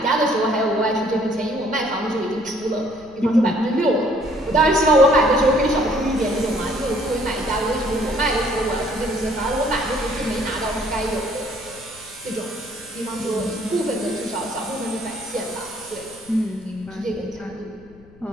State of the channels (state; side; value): noise; left; rumble, 24 dB below the sound